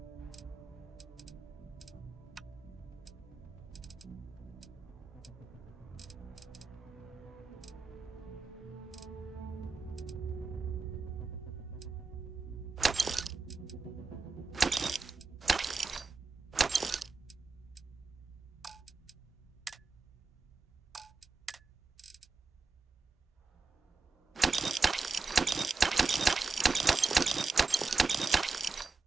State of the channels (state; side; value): quieter; left; 4.3 dB